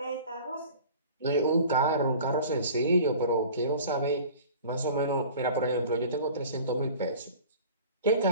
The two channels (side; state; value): both; inverted; correlation -0.42